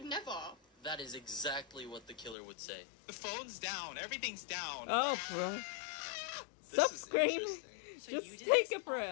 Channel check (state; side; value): drops out; right; at 2.4 s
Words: never. That is exactly what the killer would say. The phone's down. Everything's down. Oh, bro. Stop screaming. So Just you did take this a for